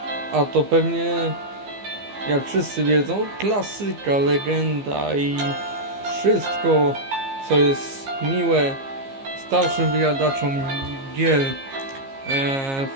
a to pewnie, jak wszyscy wiedzą, klasyka, legenda i wszystko, co jest miłe starszym wyjadaczom gier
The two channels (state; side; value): late; left; 15 ms